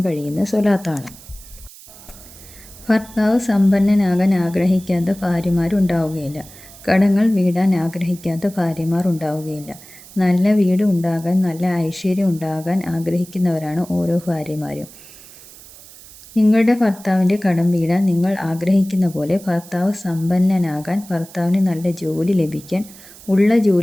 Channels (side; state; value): right; noise; hiss, 20 dB below the sound